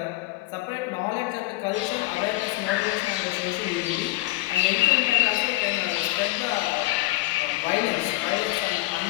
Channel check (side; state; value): right; quieter; 18.8 dB